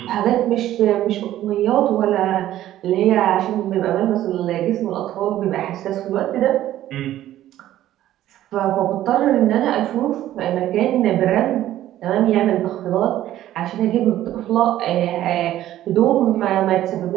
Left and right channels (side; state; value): left; quieter; 13.3 dB